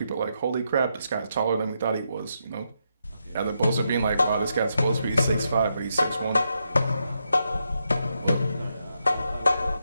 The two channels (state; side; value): inverted; both; correlation -0.82